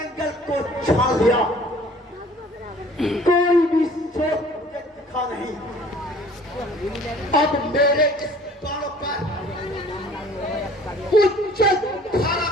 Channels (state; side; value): normal; both; correlation 0.52